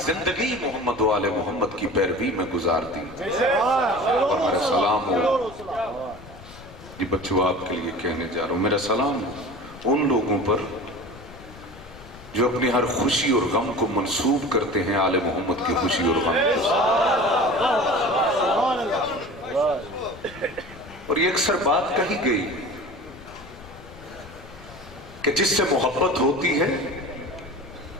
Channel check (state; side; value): noise; left; rumble, 19 dB below the sound